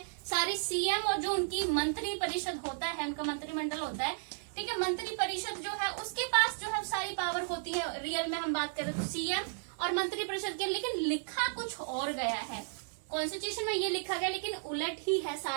सारी सीएम और जो उनकी मंत्री परिषद होता है, उनका मंत्रिमंडल होता है, ठीक है, मंत्री परिषद जो है उसके पास जो है सारी पावर होती है। रियल में हम बात करें तो सीएम और मंत्री परिषद के, लेकिन लिखा कुछ और गया है, कॉन्स्टिट्यूशन में ये लिखा गया, लेकिन उलट ही है,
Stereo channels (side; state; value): left; silent; digital silence